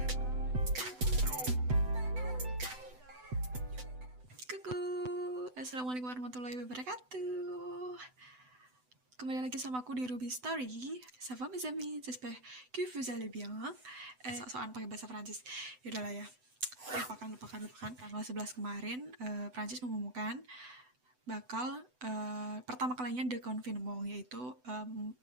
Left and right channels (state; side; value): late; left; 7.9 ms